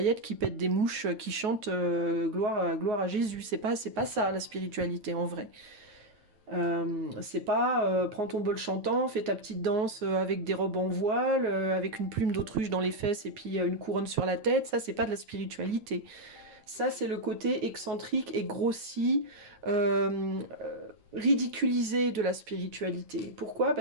qui pètent des mouches, qui chantent gloire à Jésus. C'est pas ça la spiritualité en vrai. C'est pas prends ton bol chantant, fais ta petite danse avec des robes en voile, avec une plume d'autruche dans les fesses et puis une couronne sur la tête. Ça, c'est pas de la spiritualité. Ça, c'est le côté excentrique et grossi, ridiculisé de la spiritualité. Pourquoi?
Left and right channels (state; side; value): late; left; 9.0 ms